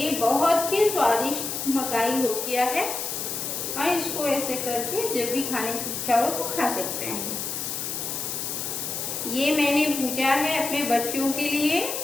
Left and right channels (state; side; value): noise; left; hiss, 4 dB below the sound